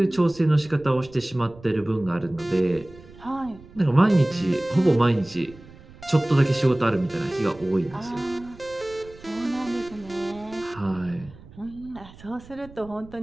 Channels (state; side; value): noise; right; rumble, 21 dB below the sound